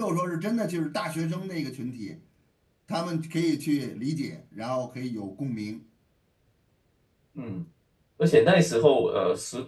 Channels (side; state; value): both; identical; correlation 1.00